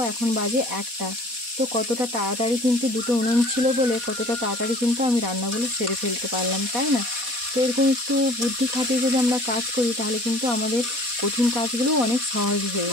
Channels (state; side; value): late; left; 4.1 ms